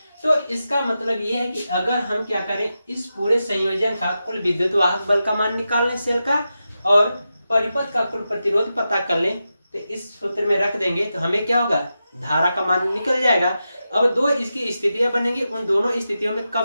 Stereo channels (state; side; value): inverted; both; correlation -0.90